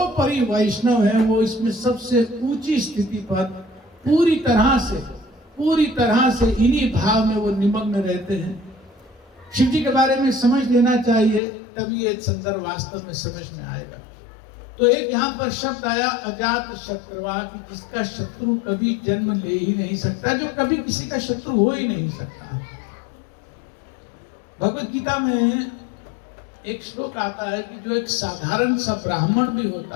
वैष्णव है, वो इसमें सबसे ऊंची स्थिति पर पूरी तरह से इन्हीं भाव में वो निमग्न रहते हैं। शिव जी के बारे में समझ लेना चाहिए, तभी ये संदर्भ वास्तव में समझ में आएगा। तो एक यहाँ पर शब्द आया अजात शत्रुवा, कि जिसका शत्रु कभी जन्म ले ही नहीं सकता, जो कभी किसी का शत्रु हो ही नहीं सकता। भगवत गीता में एक श्लोक आता है कि जो एक साधारण सा ब्राह्मण भी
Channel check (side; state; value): right; drops out; at 11.4 s